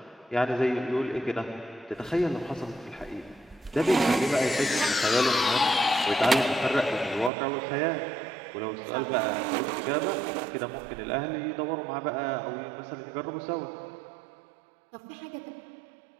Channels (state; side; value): drops out; left; at 7.3 s